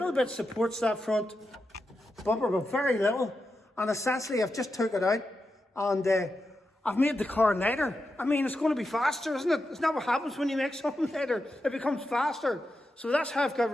bit supports that front bumper, but very little. And essentially, I've just took it out and I've made the car lighter. I mean, it's going to be faster, isn't it? It's not what happens when you make something lighter. It becomes faster. So that's how I've got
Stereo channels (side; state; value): both; normal; correlation 0.88